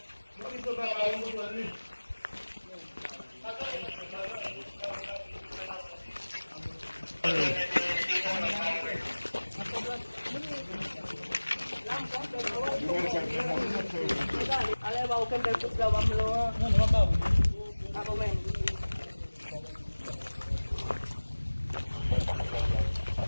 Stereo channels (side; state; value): both; inverted; correlation -1.00